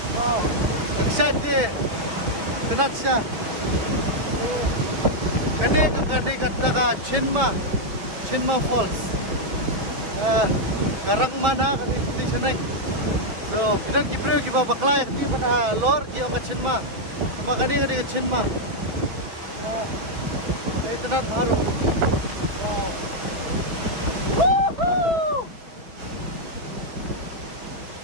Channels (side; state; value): left; late; 6.1 ms